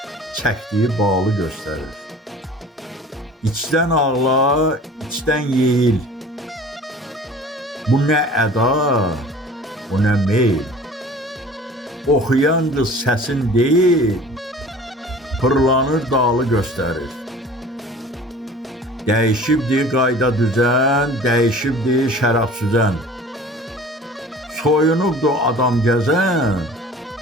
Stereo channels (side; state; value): both; normal; correlation 0.45